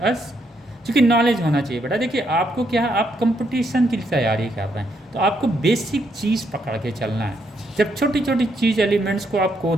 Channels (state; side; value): normal; both; correlation 0.76